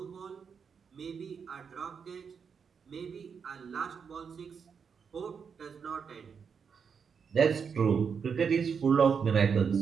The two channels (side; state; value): left; quieter; 6.4 dB